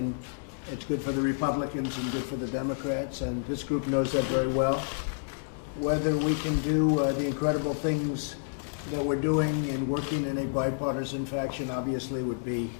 it's good for the Republicans and good for the Democrats, and this group knows that very well. Whether we can do the incredible things that we're doing and working in a bipartisan fashion obviously would be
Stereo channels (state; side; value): silent; right; 58 dB below the other